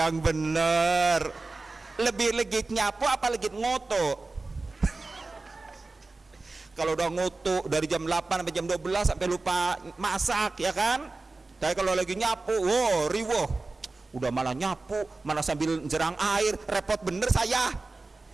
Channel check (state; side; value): quieter; left; 3.5 dB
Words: bener, lebih legit nyapu apa legit ngutu? Kalau udah ngutu dari jam 8 sampai jam 12 sampai lupa masak, ya kan? Tapi kalau lagi nyapu, riwuh, udah malah nyapu, malah sambil jerang air, repot bener saya.